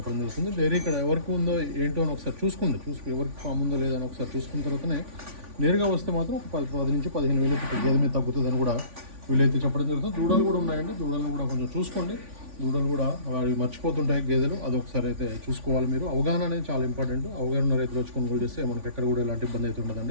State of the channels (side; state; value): left; late; 3.5 ms